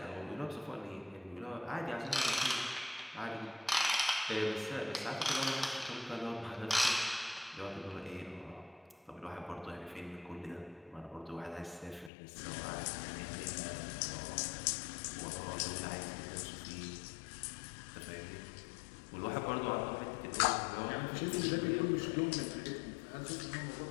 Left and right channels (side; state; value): right; drops out; at 12.1 s